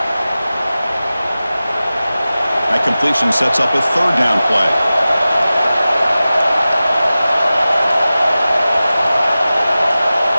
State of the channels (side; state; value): both; inverted; correlation -0.96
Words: That completion sets up a third down play.